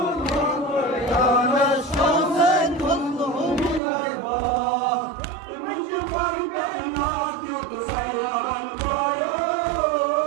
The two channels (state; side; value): drops out; left; at 3.8 s